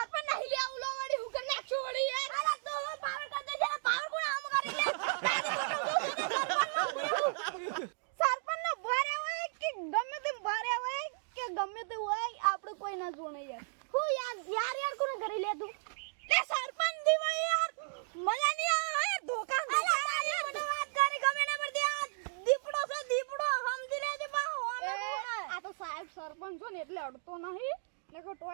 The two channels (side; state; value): left; silent; digital silence